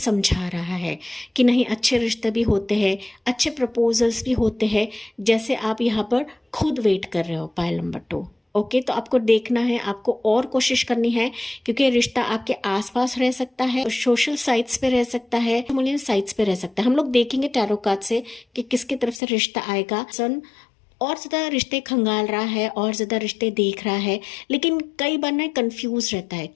रहा है कि नहीं, अच्छे रिश्ते भी होते हैं, अच्छे प्रपोजल्स भी होते हैं, जैसे आप यहाँ पर खुद वेट कर रहे हो पाइल नंबर 2, ओके। तो आपको देखना है, आपको और कोशिश करनी है, क्योंकि रिश्ता आपके आसपास रह सकता है, सोशल साइट्स पे रह सकता है, सोशल साइट्स पे रह सकता है। हम लोग देखेंगे टैरो कार्ड से कि किसकी तरफ से रिश्ता आएगा। सन और ज़्यादा रिश्ते खंगाल रहा है और ज़्यादा रिश्ते देख रहा है, लेकिन कई बार ना कंफ्यूज रहता है,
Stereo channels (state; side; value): drops out; right; at 19.2 s